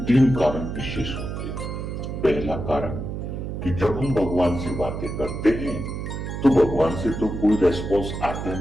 तीन कारण विशेष होते हैं। पहला कारण कि जब हम भगवान से बातें करते हैं तो भगवान से तो कोई रेस्पॉन्स आता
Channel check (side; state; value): right; noise; hum, 5 dB below the sound